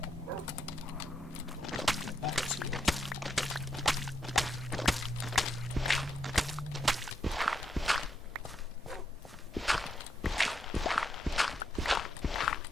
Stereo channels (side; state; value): both; normal; correlation 0.81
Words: get back to it.